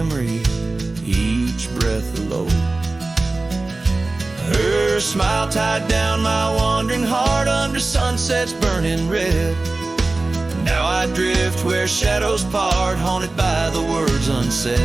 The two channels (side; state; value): left; quieter; 3.2 dB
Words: each breath a load. Her smile tied down my wandering heart under sunsets burning red. Now I drift where shadows part, haunted by the words unsaid.